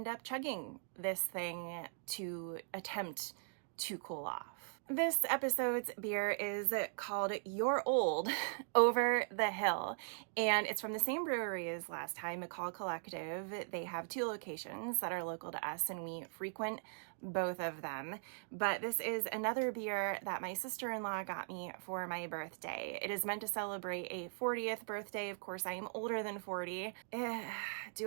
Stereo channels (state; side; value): silent; left; digital silence